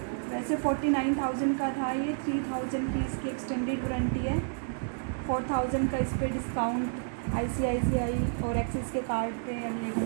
वैसे 49,000 का था ये, 3,000 की इसकी एक्सटेंडेड वारंटी है, 4,000 का इस पर डिस्काउंट ICICI और एक्सिस के कार्ड पे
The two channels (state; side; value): silent; left; 58 dB below the other